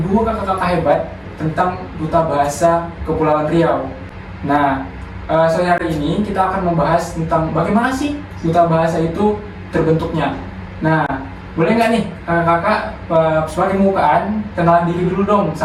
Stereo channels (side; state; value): both; identical; correlation 1.00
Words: kakak-kakak hebat tentang Duta Bahasa Kepulauan Riau. Nah, sore hari ini kita akan membahas tentang bagaimana sih Duta Bahasa itu terbentuknya. Nah, boleh nggak nih kakak sebagai pembukaan kenalan diri dulu dong